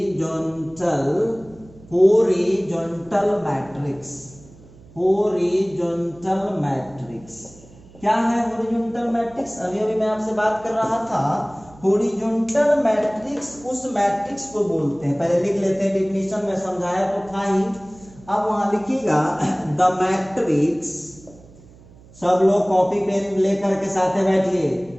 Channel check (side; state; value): right; noise; hum, 23 dB below the sound